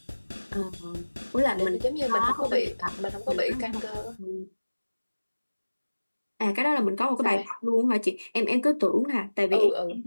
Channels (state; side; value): inverted; both; correlation -1.00